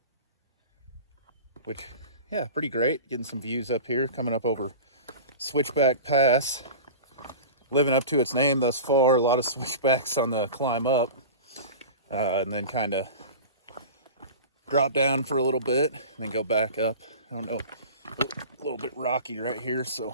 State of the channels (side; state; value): both; inverted; correlation -0.33